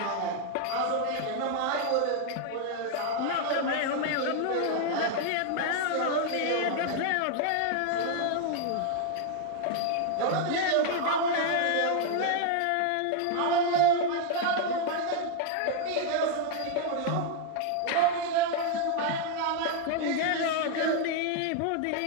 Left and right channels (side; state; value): both; different; correlation 0.00